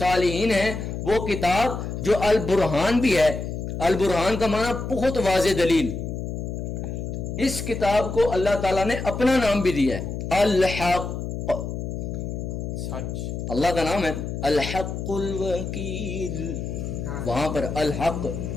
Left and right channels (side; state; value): left; noise; hum, 5 dB below the sound